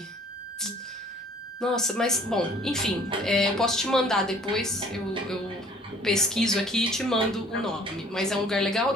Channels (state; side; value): normal; both; correlation 0.54